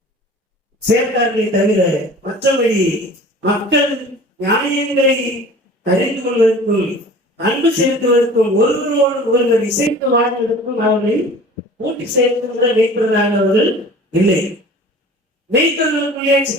சேர்த்தார்களே தவிர மற்றபடி மக்கள் நியாயங்களை அறிந்து கொள்வதற்கும் அன்பு செலுத்துவதற்கும் ஒருவரோடு ஒருவர் இசைத்து வாழ்வதற்கும் அவர்களை கூட்டி சேர்க்கின்ற மேய்ப்பவர்களாக அவர்கள் இல்லை. மேய்ப்பவர்களுக்குள்ளே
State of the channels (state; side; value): normal; both; correlation 0.43